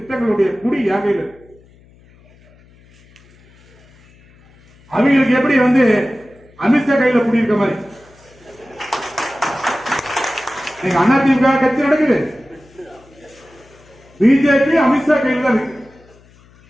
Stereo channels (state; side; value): noise; left; hum, 28 dB below the sound